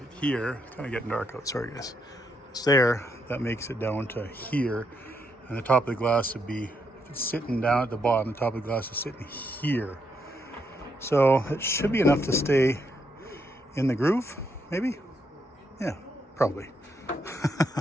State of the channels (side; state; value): both; normal; correlation 0.78